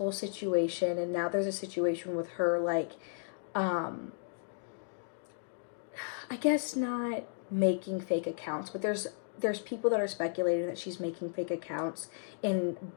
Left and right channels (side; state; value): right; silent; digital silence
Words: situation, and now there's a situation with her, like, I guess not making fake accounts, but there's people that are speculating that she's making fake accounts and